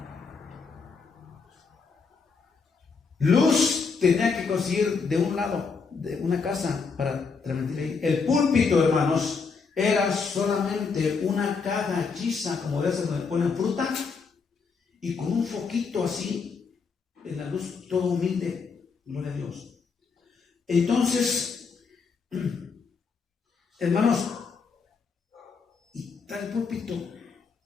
Luz tenía que conseguir de un lado, de una casa, para transmitir ahí. El púlpito, hermanos, era solamente una caja hechiza, como de esas donde ponen fruta, y con un foquito así, en la luz, todo humilde, gloria a Dios. Entonces, hermanos, y está el púlpito,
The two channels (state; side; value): quieter; right; 5.1 dB